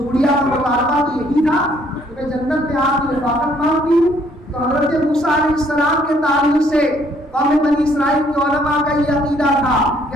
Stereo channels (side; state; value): both; normal; correlation 0.65